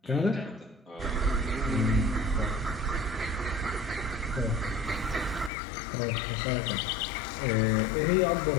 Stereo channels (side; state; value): right; drops out; at 5.5 s